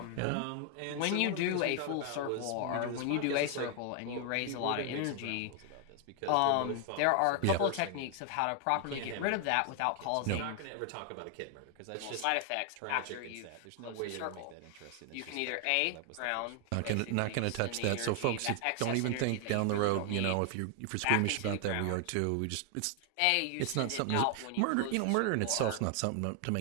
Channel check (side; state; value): both; different; correlation 0.00